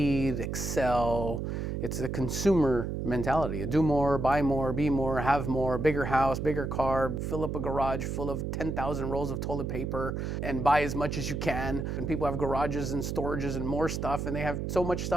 excel. It's a consumer mentality. Do more, buy more, be more, have more, bigger house, bigger car, fill up a garage full of 10,000 rolls of toilet paper and buy as much as you can. And people have garages and storages and more stuff, and they have so much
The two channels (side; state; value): right; noise; hum, 3 dB below the sound